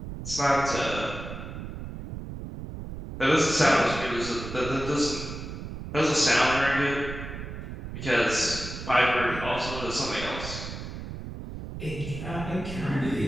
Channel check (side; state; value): right; noise; rumble, 9 dB below the sound